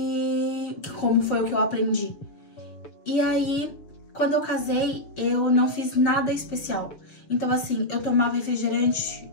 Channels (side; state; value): right; late; 6.7 ms